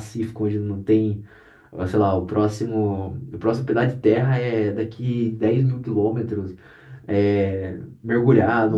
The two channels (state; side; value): identical; both; correlation 1.00